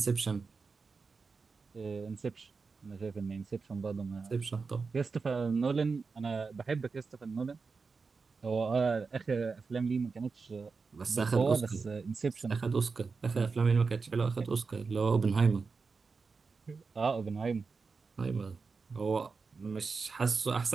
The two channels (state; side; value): quieter; left; 4.7 dB